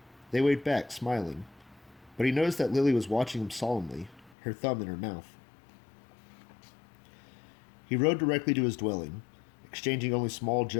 They waved back, smiling. But he noticed that Lily was watching him solemnly, her thumb in her mouth. He rode directly to his dwelling, exchanging only small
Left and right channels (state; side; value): drops out; right; at 4.4 s